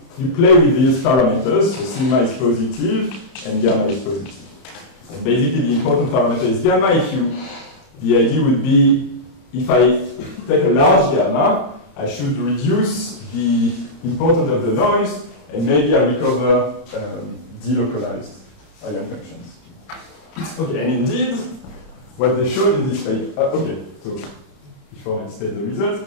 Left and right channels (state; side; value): late; right; 31 ms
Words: you play with these parameters, so sigma is positive and gamma is positive. And basically the important parameter is gamma. The idea would be, if I take a large gamma, I should reduce the importance of the noise, and maybe I recover delocalized eigenfunctions. Okay, and indeed, what they showed in this paper, okay, so before I state the results,